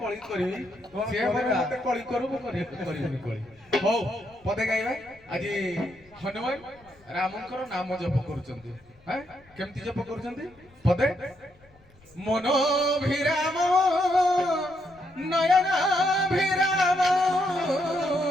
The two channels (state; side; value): noise; left; rumble, 29 dB below the sound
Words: କରିବି ସିଏ ମତେ କଳି କରୁ ମୁଁ କରିବିନି କଳି ହଉ ପଦେ ଗାଇବା ଆଜି ହନୁମାନ ରାମଙ୍କର ନାମ ଜପ କରୁଛନ୍ତି କେମିତି ଜପ କରୁଛନ୍ତି ପଦେ ମନୋଭିରାମ ନୟନାଭିରାମ